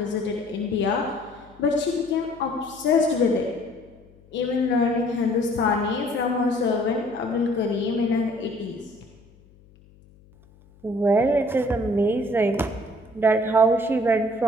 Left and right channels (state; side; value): noise; left; hum, 27 dB below the sound